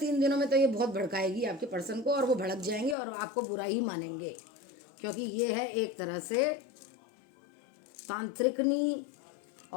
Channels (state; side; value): drops out; right; at 3.0 s